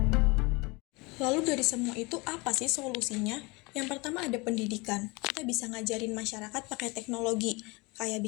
Lalu dari semua itu apa sih solusinya? Yang pertama ada pendidikan. Kita bisa ngajarin masyarakat pakai teknologi, kayak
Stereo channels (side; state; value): right; quieter; 25.8 dB